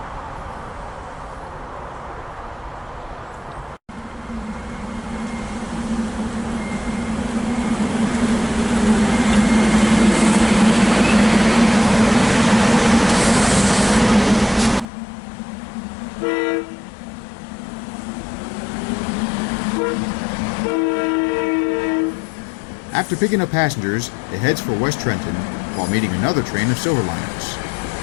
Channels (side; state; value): right; drops out; at 14.9 s